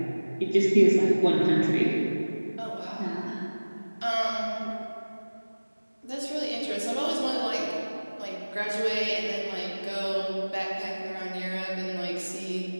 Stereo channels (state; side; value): inverted; both; correlation -1.00